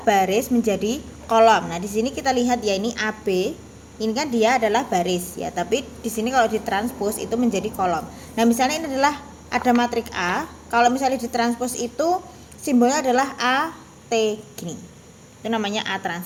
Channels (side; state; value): both; identical; correlation 1.00